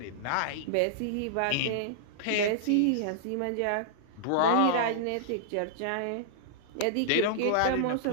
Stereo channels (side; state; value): both; different; correlation -0.02